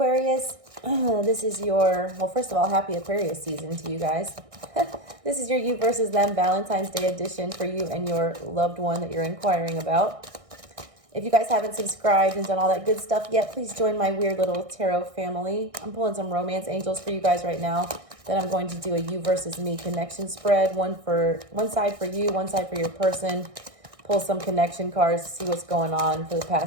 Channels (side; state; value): left; late; 1.6 ms